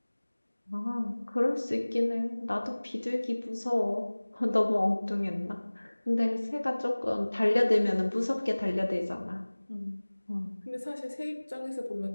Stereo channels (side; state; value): both; inverted; correlation -1.00